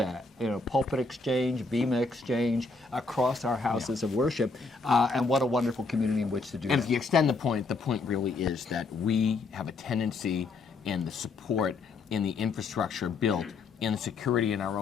pulpit exchange, bema exchange, across our houses of worship, and what a wonderful community in which to do And that. if you extend the point really is that we have a tendency in the support, in the infrastructure built, in the security in our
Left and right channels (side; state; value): right; quieter; 3.9 dB